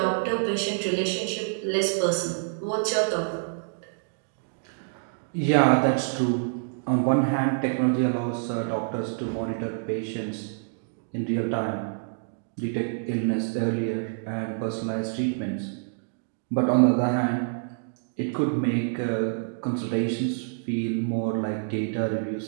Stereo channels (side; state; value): left; silent; digital silence